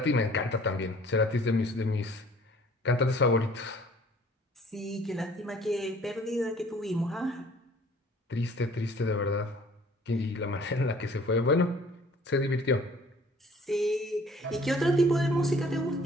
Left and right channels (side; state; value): both; normal; correlation 0.54